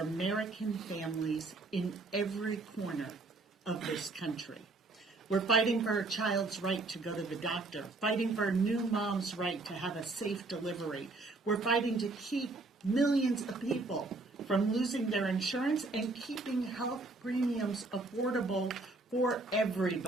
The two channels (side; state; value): left; quieter; 3.3 dB